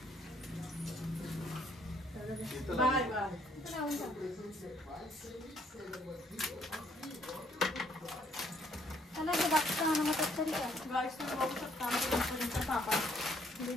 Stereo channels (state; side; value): normal; both; correlation 0.67